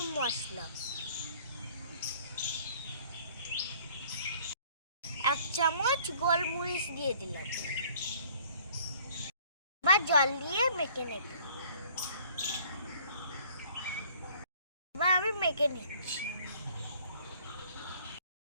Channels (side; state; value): both; inverted; correlation -0.56